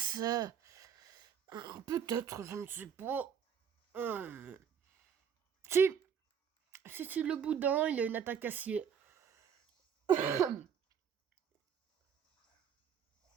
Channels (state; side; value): quieter; left; 7.7 dB